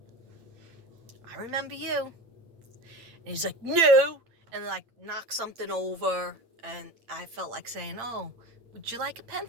I remember you. And he's like, no, and like knock something over, and I felt like saying, oh, would you like a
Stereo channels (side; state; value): left; late; 8.8 ms